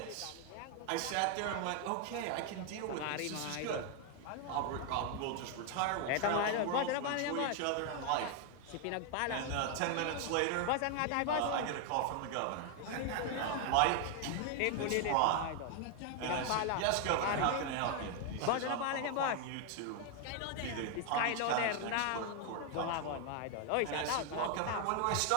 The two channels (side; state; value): both; different; correlation 0.00